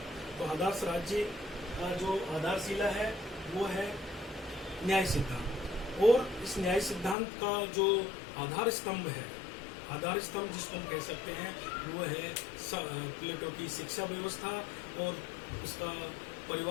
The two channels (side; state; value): right; drops out; at 7.2 s